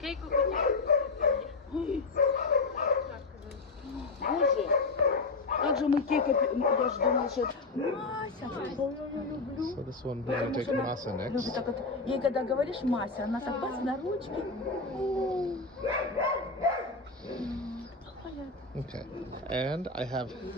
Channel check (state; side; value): quieter; right; 3.7 dB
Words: Ой. Боже, как же мы Кейка... Я же думала, что... Мася, ой, я люблю. So this one, we're gonna take Masa next. Так вот, ей когда говоришь Мася, она так бац на ручки. Okay. And I have